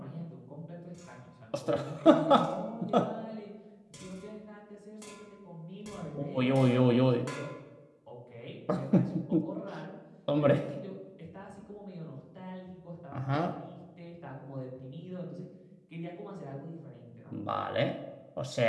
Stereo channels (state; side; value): identical; both; correlation 1.00